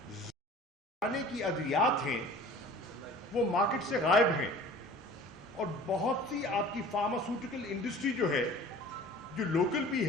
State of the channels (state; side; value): normal; both; correlation 0.45